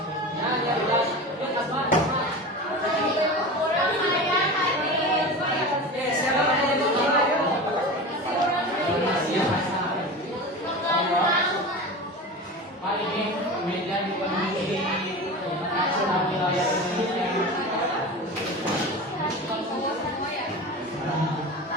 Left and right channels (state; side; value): normal; both; correlation 0.30